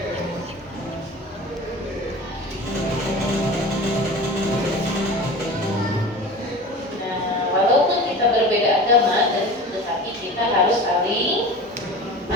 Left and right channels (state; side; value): normal; both; correlation 0.35